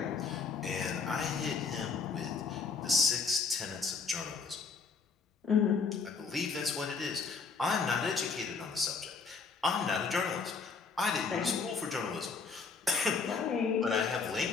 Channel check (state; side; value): quieter; right; 5.0 dB